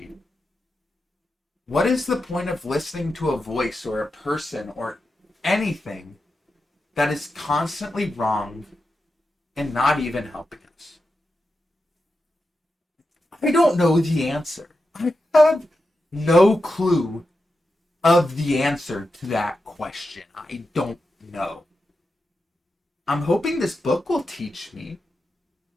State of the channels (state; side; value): normal; both; correlation 0.89